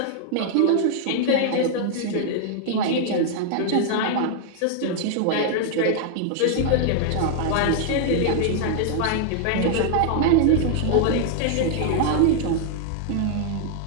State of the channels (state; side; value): different; both; correlation 0.00